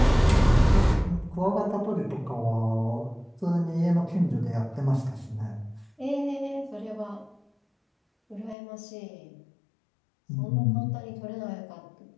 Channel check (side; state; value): right; drops out; at 8.6 s